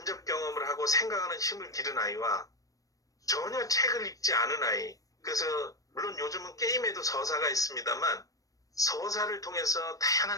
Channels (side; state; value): right; late; 0.16 ms